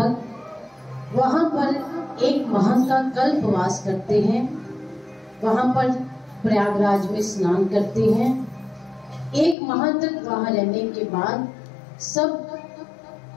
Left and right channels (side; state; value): right; drops out; at 9.6 s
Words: वहां पर एक माह का कल्पवास करते हैं। वहां पर प्रयागराज में स्नान करते हैं। एक माह तक वहां रहने के बाद सब